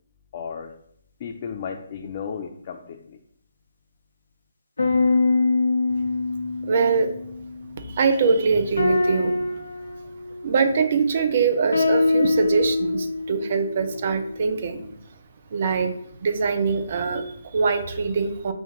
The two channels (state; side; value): inverted; both; correlation -0.79